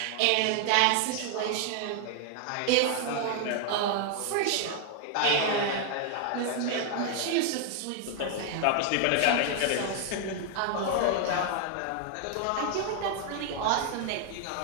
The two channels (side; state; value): both; different; correlation 0.00